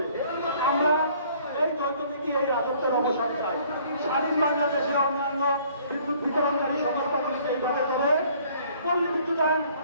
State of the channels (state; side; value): inverted; both; correlation -0.58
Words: আমরা এই যৌথনীতি, এই রাজত্বের অবসান চাই। স্বাধীন বাংলাদেশে অন্যান্য বিদ্যুৎ বিতরণকারী সংস্থাগুলিকে এইভাবে করে পল্লী বিদ্যুতায়ন